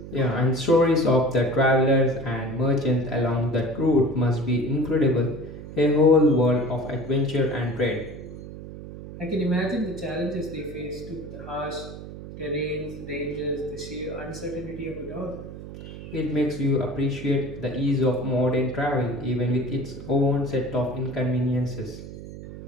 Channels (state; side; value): noise; right; hum, 12 dB below the sound